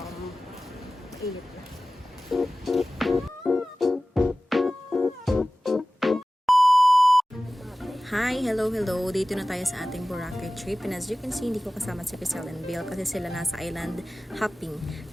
init na. Hi! Hello! Dito na tayo sa ating Boracay trip. And as you can see, hindi ko kasama si Pisel and Bill kasi sila nasa island hopping.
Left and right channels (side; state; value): both; normal; correlation 0.96